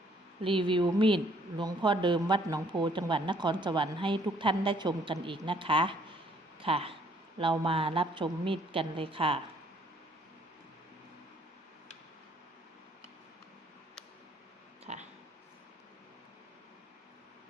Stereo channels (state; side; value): normal; both; correlation 0.63